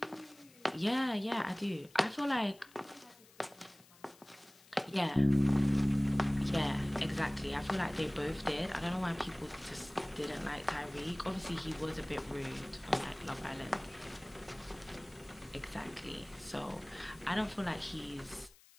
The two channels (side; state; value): left; noise; hiss, 25 dB below the sound